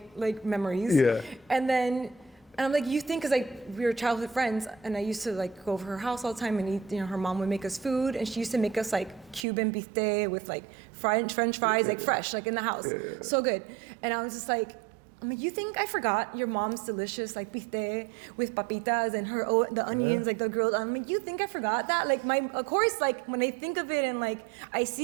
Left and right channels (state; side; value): drops out; left; at 9.5 s